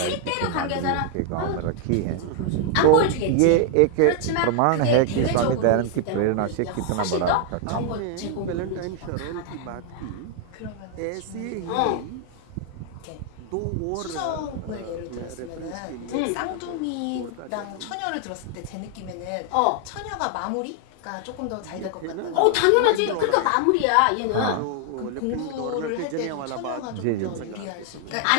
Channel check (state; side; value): different; both; correlation 0.00